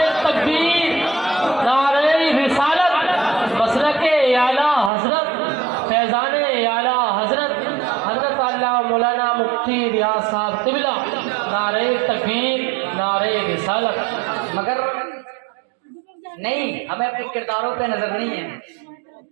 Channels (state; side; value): drops out; left; at 4.9 s